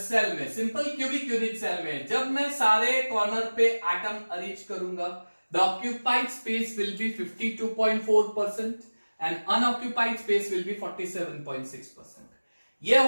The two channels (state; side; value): inverted; both; correlation -1.00